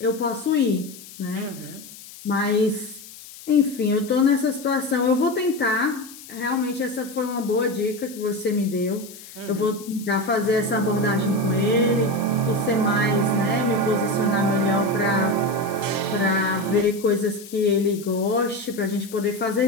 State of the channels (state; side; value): noise; left; hiss, 17 dB below the sound